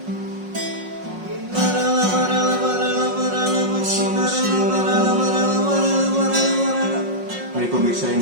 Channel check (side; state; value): left; late; 5.5 ms